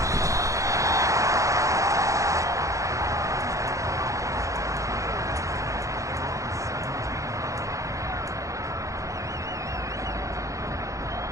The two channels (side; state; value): left; late; 0.15 ms